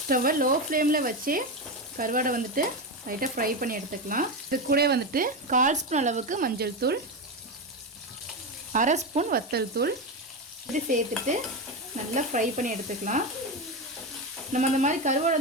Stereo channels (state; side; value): normal; both; correlation 0.14